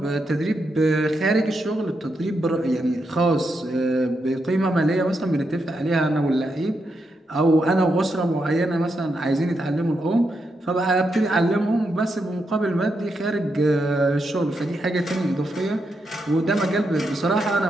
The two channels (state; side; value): normal; both; correlation 0.83